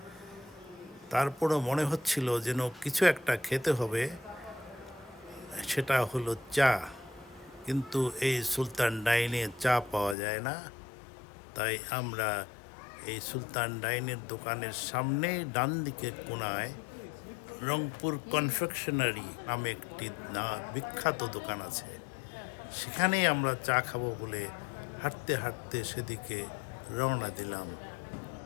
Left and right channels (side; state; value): right; drops out; at 10.2 s